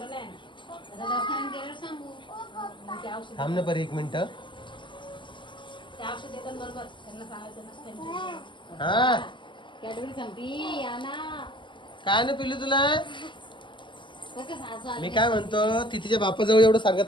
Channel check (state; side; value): late; right; 0.24 ms